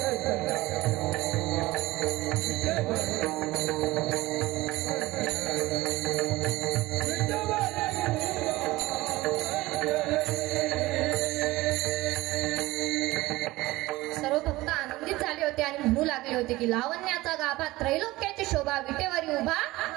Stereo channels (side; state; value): left; quieter; 19.0 dB